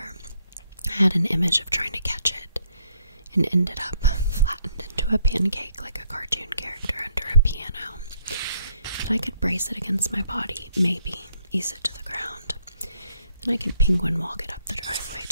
I had an image of trying to catch it, and ended up flattened into a pancake like a cartoon character under a piano. But I could brace it against my body, maybe ease it to the ground. Then I could penguin walk it up the driveway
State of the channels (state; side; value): inverted; both; correlation -0.70